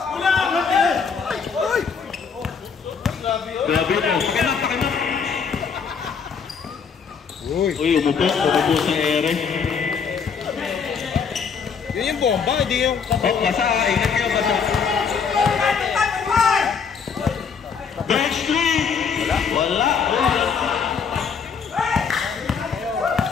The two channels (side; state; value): right; quieter; 6.1 dB